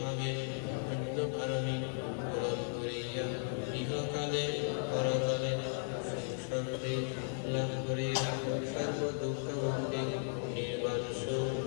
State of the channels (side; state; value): right; silent; digital silence